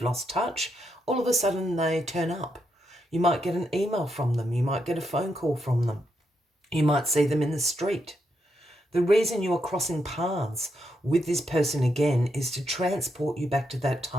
lost touch. All of a sudden they turn up. You might get an email from them. You might get a phone call from them. You might see them in the street. The reason you are crossing paths with this person again is to transport you back to that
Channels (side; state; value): both; normal; correlation 0.81